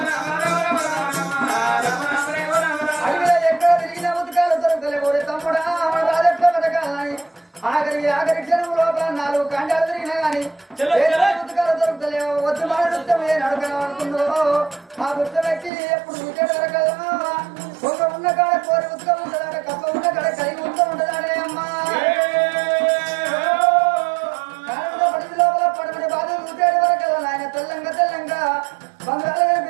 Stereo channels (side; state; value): left; drops out; at 15.7 s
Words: అడిగిన ఎక్కడ తిరిగిన ఉతకాలు దొరకలే తమ్ముడా రాజెట్ల బతకాలని ఆఖరి క్షణం లోపల 4 ఖండాలు తిరిగినా గాని ఉతకాలు దొరుకుతలేవు వద్దు మాడుతామే నడకనడుతుందో ఆ గుర్త వ్యక్తి ఎప్పుడు వికెట్ దొరకదా కొంగ ఉన్న కాడ కోరి ఉతక ఉంటుందాడ కప్ప ఉన్న కాడ కలిగి ఉంటుందాడే అమ్మా పడి లోపల పడమని బాధ ఉతేడు వరకు ఆయన తెల్లంగా బంగాళ